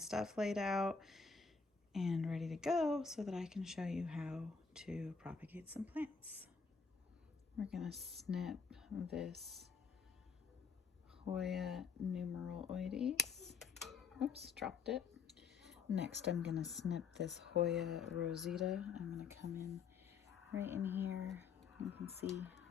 laid out and ready to go so that I can show you how to propagate some plants. We're going to snip this Hoya numeraloides. Oops, dropped it. Next, I'm going to snip this Hoya rosita. I'm going to come in right in here. You can see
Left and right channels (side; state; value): right; quieter; 5.4 dB